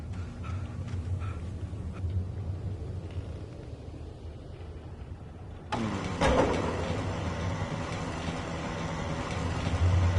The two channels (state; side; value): identical; both; correlation 1.00